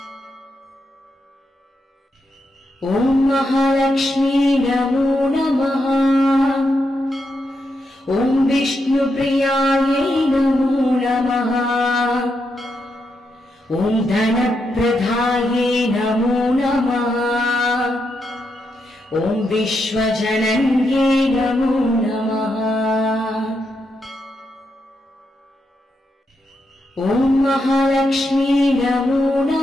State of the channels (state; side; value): normal; both; correlation 0.83